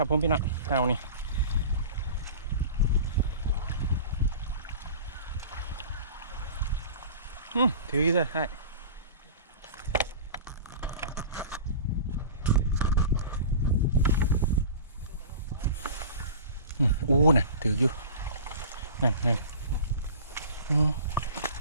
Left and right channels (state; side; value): inverted; both; correlation -0.37